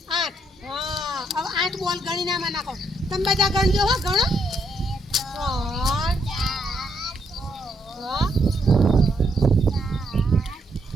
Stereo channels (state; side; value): normal; both; correlation 0.75